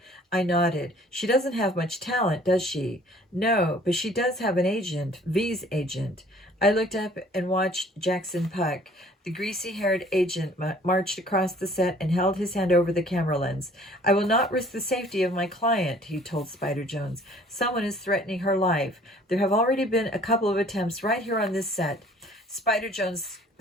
I nodded. She doesn't have much talent, does she? No, but she does have an agent, V's agent. I looked up and watched Jackson Puck. The greasy-haired agent marched across the set and held his hand over the camera lens. I will not risk the safety of my client, he told Spider Jones. Someone is threatening her life. There have already been a couple of attempts right here on this set. Spider Jones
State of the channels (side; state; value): both; normal; correlation 0.54